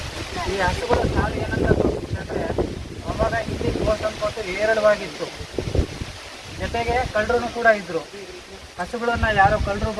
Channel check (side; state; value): both; identical; correlation 1.00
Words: ಈ ಹಸುಗಳ ಸಾಲು ಏನಂತ ತೋರಿಸ್ತಂದ್ರೆ, ಅವಾಗ ಇಲ್ಲಿ ಗೋಸಂಪತ್ತು ಹೇರಳವಾಗಿತ್ತು. ಜೊತೆಗೆ ಕಳ್ಳರು ಕೂಡ ಇದ್ರು. ಹಸುಗಳನ್ನು ಯಾರೋ ಕಳ್ಳರು